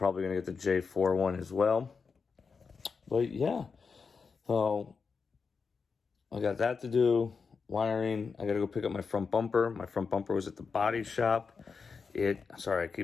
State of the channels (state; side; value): quieter; right; 5.2 dB